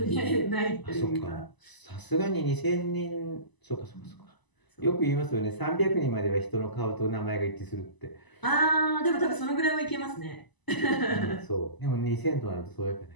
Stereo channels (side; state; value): right; late; 1.0 ms